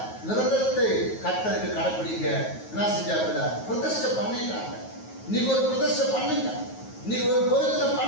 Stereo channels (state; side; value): late; right; 9.4 ms